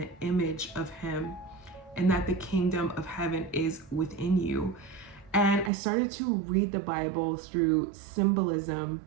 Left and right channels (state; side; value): drops out; left; at 5.7 s